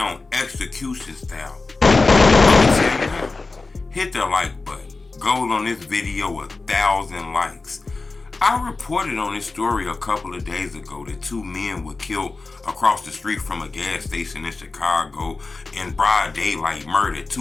execution style. I'ma tell you now, hit the like button. Goal on this video 1,000 likes. I reported on this story a couple of days ago that 2 men were killed across the street from a gas station in Chicago in broad daylight, murdered.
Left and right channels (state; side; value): quieter; right; 3.7 dB